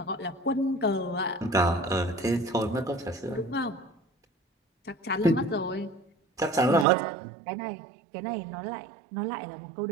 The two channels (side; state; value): left; drops out; at 6.9 s